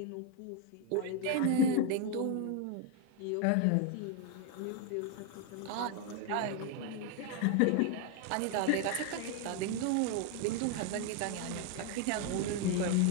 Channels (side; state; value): both; different; correlation 0.01